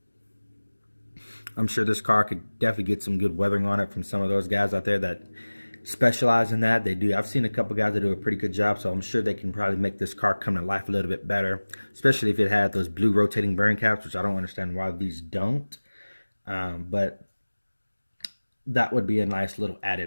I'm sure this car could definitely get some good weathering on it from some of those guys out there that specialize in that. They do. I've seen a couple guys that do a pretty good job, so I'm sure they can probably make this car come to life a little bit better, especially if it had those blue rotating bearing caps, which I don't understand why these don't. But that would be a nice little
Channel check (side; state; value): both; inverted; correlation -1.00